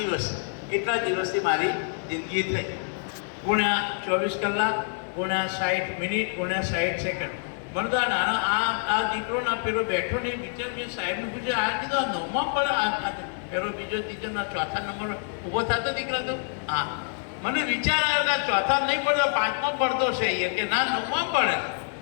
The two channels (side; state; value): right; silent; 59 dB below the other